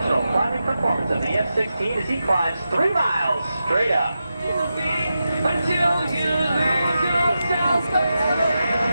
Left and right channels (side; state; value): both; inverted; correlation -0.90